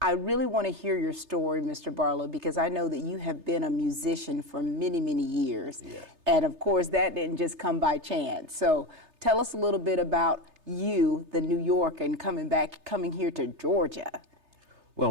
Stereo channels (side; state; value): left; late; 3.3 ms